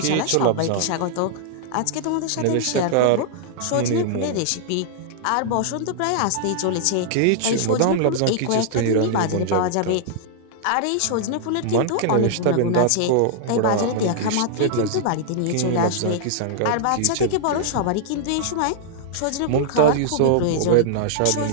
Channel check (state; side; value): different; both; correlation -0.01